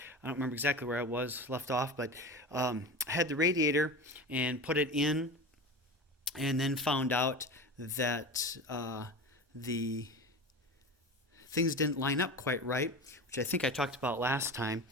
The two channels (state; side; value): normal; both; correlation 0.29